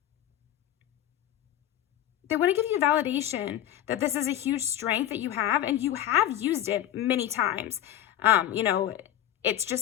They want to give you validation that this is a huge strength that you have, and you have used it many times. You know, it's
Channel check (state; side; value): quieter; right; 12.0 dB